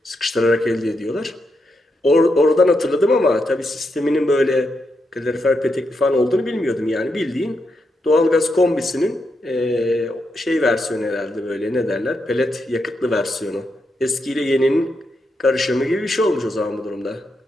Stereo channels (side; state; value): both; normal; correlation 0.83